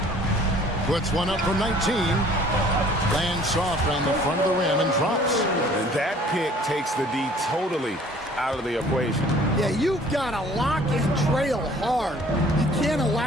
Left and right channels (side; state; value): both; normal; correlation 0.53